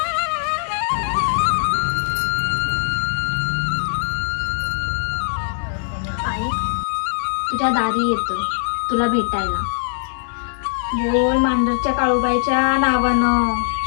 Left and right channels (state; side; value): silent; right; 65 dB below the other